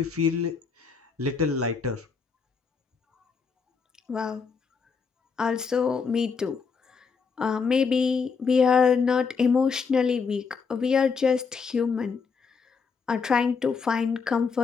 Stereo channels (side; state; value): right; quieter; 5.4 dB